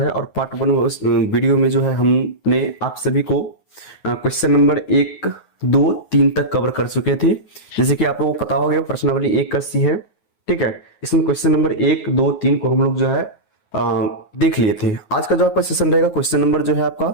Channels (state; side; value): late; right; 9.5 ms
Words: और पार्ट वन वीडियो में जो है हमने आप सभी को क्वेश्चन नंबर 1, 2, 3 तक कवर कर चुके थे। जैसे कि आप लोगों को पता हो गया प्रश्नावली 1 का सी है, ठीक है। इसमें क्वेश्चन नंबर 1, 2, 3 को हम लोग जो है देख लिए थे। आज का जो आपका सेशन रहेगा क्वेश्चन नंबर जो है आपका